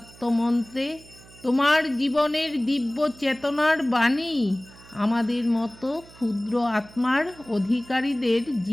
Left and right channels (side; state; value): right; noise; hum, 22 dB below the sound